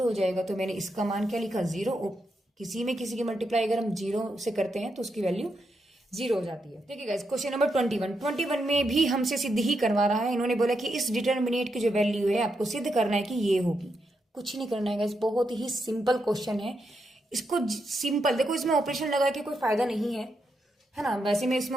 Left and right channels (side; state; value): both; normal; correlation 0.83